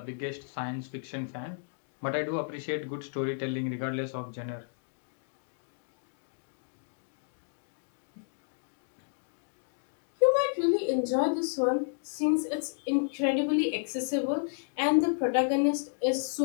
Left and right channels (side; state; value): right; silent; digital silence